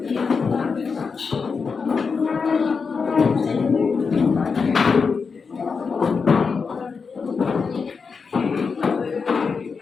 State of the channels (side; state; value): right; quieter; 5.2 dB